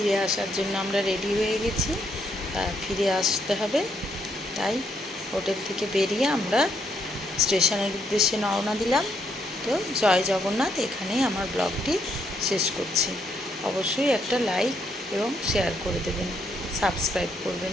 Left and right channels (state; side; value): normal; both; correlation 0.74